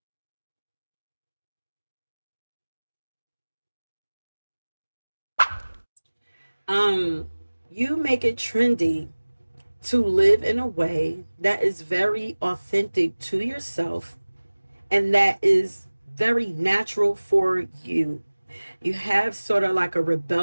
Um, you make it trendy to live in a way that is very authentic to yourself and that is very natural for you. You have sort of like a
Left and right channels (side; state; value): both; inverted; correlation -1.00